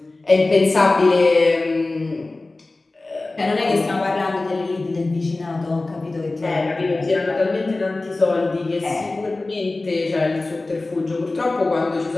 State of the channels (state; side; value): quieter; right; 3.1 dB